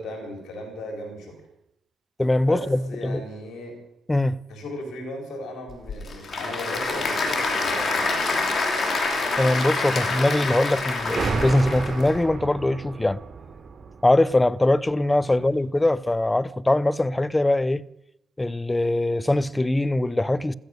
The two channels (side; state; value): both; normal; correlation 0.94